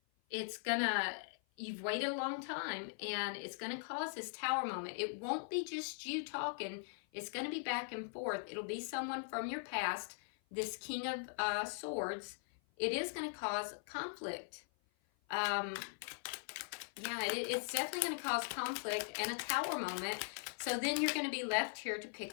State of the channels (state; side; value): silent; right; 51 dB below the other